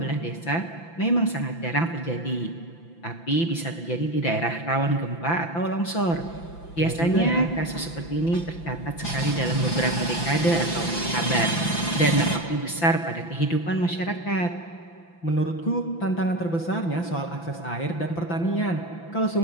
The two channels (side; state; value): right; late; 5.9 ms